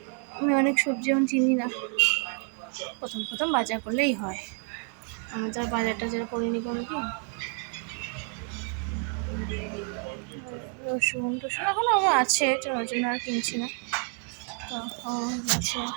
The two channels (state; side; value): quieter; left; 39.3 dB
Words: আমি অনেক সবজি এখন চিনি না, প্রথম প্রথম বাজার করলেই হয়, আমি তো আর বাজারটা যারা করিনি কোনো কি। রসুন টসুন এখন আমার আছে, ওই জন্য আর কিনছি না। তো হয়ে গেছে,